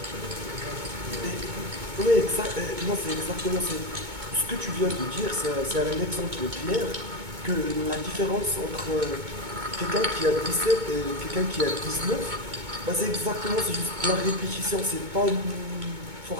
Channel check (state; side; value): late; left; 2.2 ms